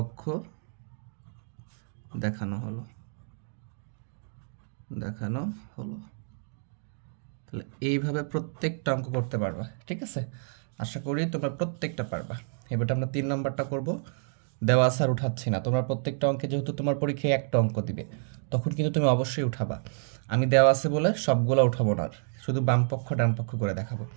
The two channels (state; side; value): silent; left; digital silence